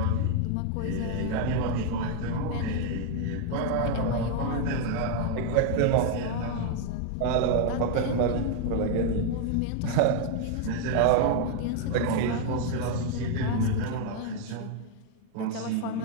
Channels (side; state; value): both; different; correlation 0.00